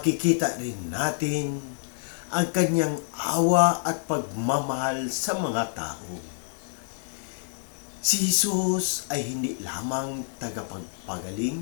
rin natin ang kanyang awa at pagmamahal sa mga tao. Si Jesus ay hindi lamang tagapagpagaling,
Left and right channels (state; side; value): silent; right; 60 dB below the other